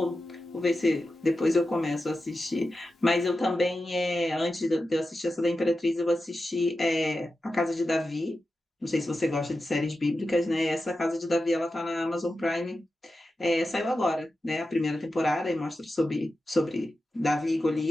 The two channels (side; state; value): both; normal; correlation 0.91